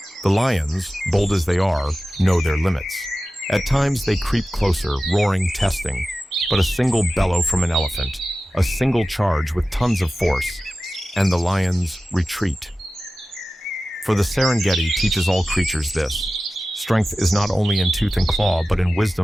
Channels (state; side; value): normal; both; correlation 0.95